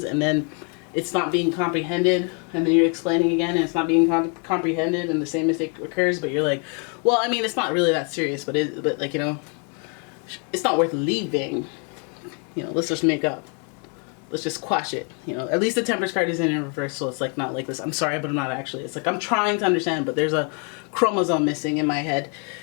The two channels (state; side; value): quieter; right; 38.3 dB